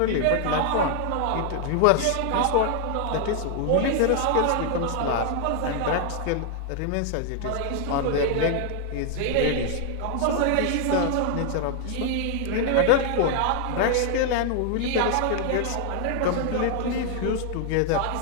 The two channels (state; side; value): different; both; correlation 0.00